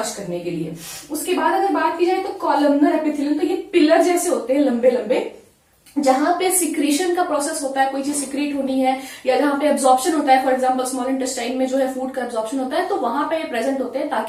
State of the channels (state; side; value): identical; both; correlation 1.00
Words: करने के लिए। उसके बाद अगर बात की जाए तो कॉलमनर एपिथेलियल, तो ये पिलर जैसे होते हैं लंबे लंबे, जहां पे सिक्रीशन का प्रोसेस होता है, कोई चीज सिक्रीट होनी है या जहां पे एब्जॉर्प्शन होता है, फॉर एग्जांपल स्मॉल इंटेस्टाइन में जो है फूड का एब्जॉर्प्शन होता है, तो वहां पे ये प्रेजेंट होते हैं